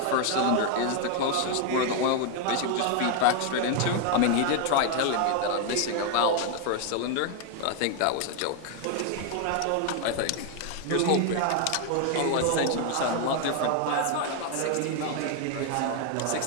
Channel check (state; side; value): different; both; correlation 0.01